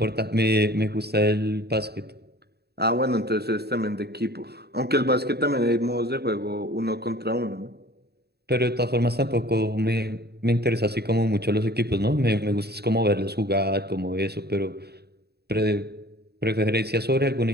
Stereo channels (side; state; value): left; late; 0.47 ms